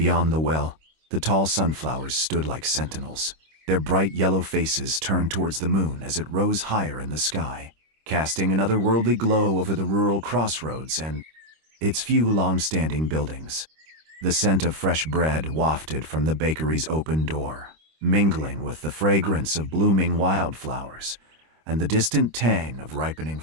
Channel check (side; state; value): left; late; 26 ms